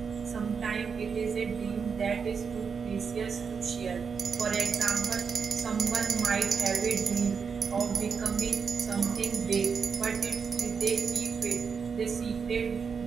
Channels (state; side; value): quieter; left; 6.0 dB